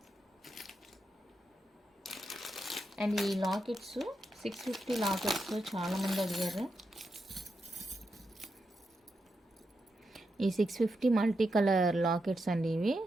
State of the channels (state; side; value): normal; both; correlation 0.86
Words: And ఈ లాకెట్స్ 650 లాకెట్స్ చాలామంది అడిగారు. ఈ 650 మల్టీ కలర్ లాకెట్స్ అండి ఇవి.